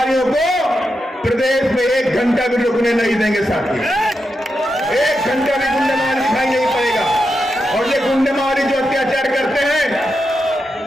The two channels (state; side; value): normal; both; correlation 0.86